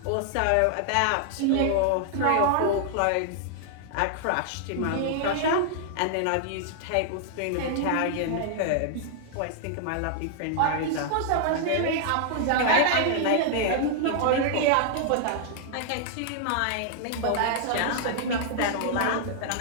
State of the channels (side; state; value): both; different; correlation -0.01